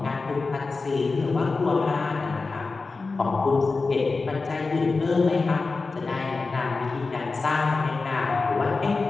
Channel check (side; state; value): right; quieter; 4.0 dB